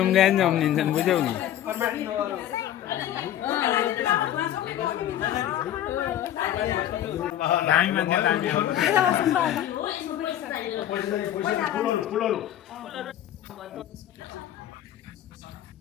जम्निन्छन् बुझ्यौ नि दामी मान्छे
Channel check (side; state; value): right; quieter; 11.8 dB